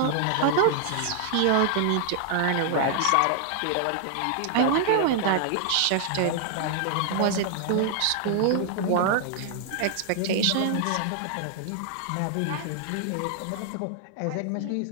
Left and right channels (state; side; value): different; both; correlation 0.00